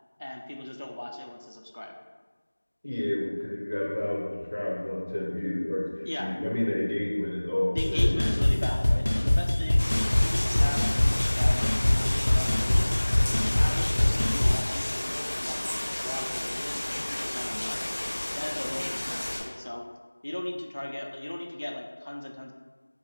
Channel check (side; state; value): both; inverted; correlation -1.00